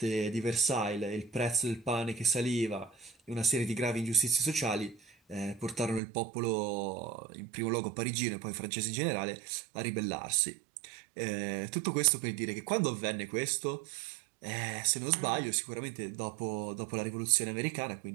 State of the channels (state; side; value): drops out; left; at 6.0 s